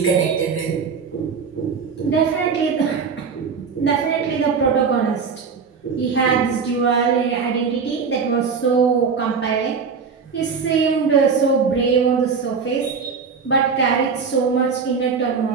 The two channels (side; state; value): left; quieter; 5.6 dB